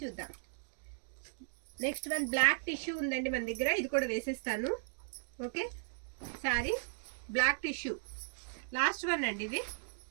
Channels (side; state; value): left; silent; digital silence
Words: చూద్దాం. నెక్స్ట్ వన్ బ్లాక్ టిష్యూ ఉందండి మన దగ్గర. ఇది కూడా వేసేస్తాను. Okay, sorry black tissue. Last one అండి ఇది.